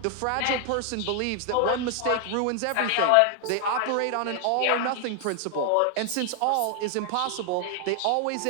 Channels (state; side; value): different; both; correlation 0.00